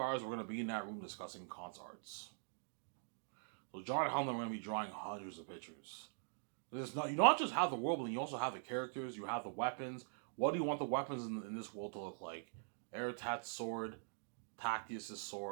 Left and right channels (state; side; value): silent; left; digital silence